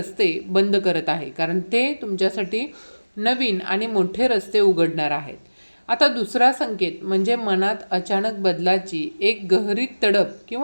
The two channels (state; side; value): inverted; both; correlation -1.00